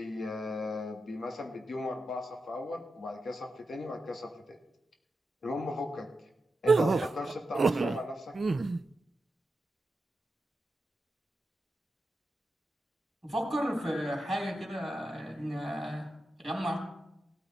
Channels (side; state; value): both; normal; correlation 0.89